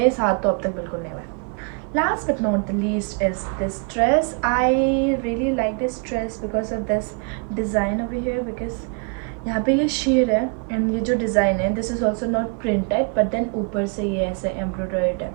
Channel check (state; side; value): quieter; left; 36.9 dB